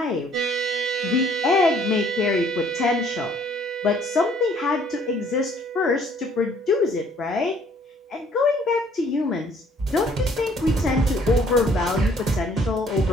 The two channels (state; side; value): normal; both; correlation 0.60